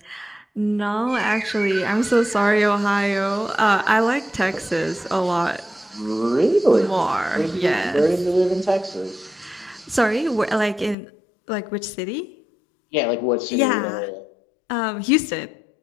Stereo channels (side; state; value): right; drops out; at 11.0 s